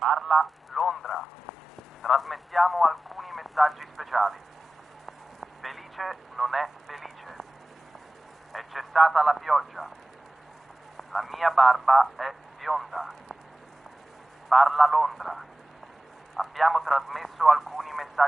Londra. Trasmettiamo alcuni messaggi speciali. Felice non è felice. È cessata la pioggia. La mia barba è bionda. Parla Londra. Abbiamo trasmesso alcuni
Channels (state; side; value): normal; both; correlation 0.95